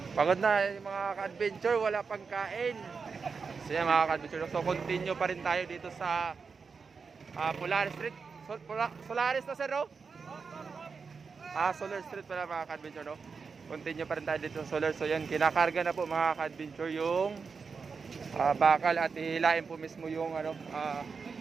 Pagod na yung mga ka-adventure, wala pang kain. So yan mga ka-adventure, so continue pa rin tayo dito sa Polaris Street. Solaris na sir, no? Solar Street pala mga ka-adventure, no? Continue pa rin tayo dito sa Solar. So yan, kinakarga na po mga ka-adventure yung bakal at hilain po mismo yung ano,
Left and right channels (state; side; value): quieter; left; 5.2 dB